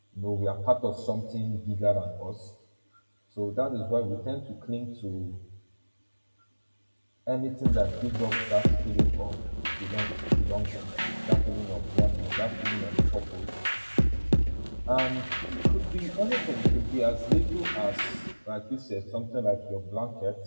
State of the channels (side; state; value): both; inverted; correlation -1.00